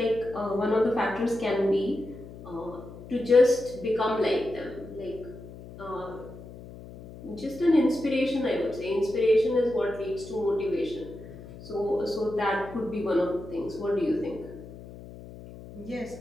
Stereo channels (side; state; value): left; noise; hum, 15 dB below the sound